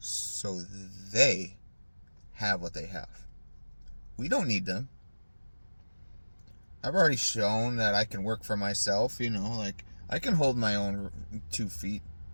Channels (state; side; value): inverted; both; correlation -1.00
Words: so they have what they have. We don't need them. I've already shown that I can work for myself, like I can hold my own 2 feet,